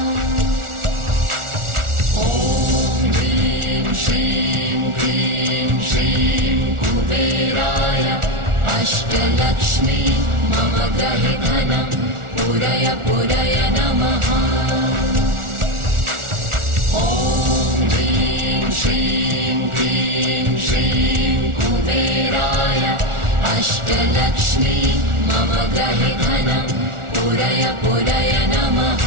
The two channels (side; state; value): left; late; 1.4 ms